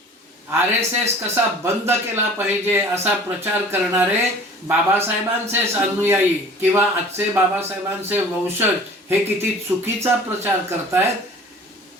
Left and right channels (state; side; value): normal; both; correlation 0.46